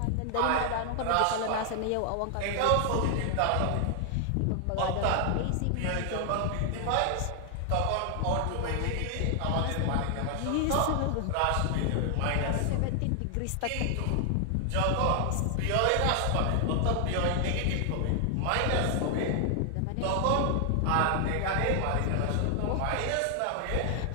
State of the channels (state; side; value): different; both; correlation 0.00